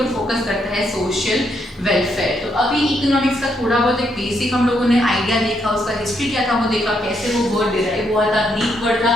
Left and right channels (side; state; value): both; normal; correlation 0.76